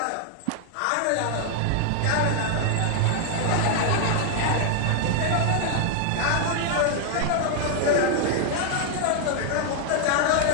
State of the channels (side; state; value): both; different; correlation 0.00